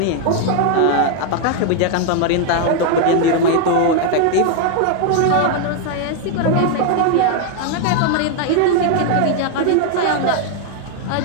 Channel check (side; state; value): both; different; correlation 0.00